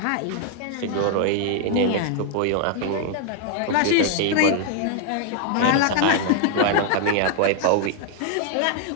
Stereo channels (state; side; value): different; both; correlation 0.00